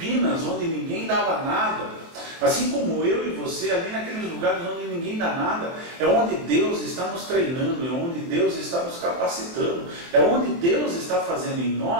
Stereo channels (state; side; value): late; left; 23 ms